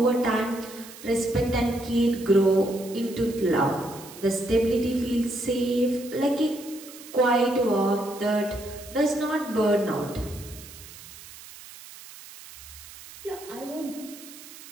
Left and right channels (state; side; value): noise; right; hiss, 17 dB below the sound